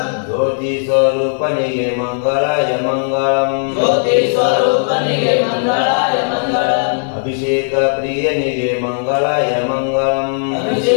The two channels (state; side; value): silent; right; 61 dB below the other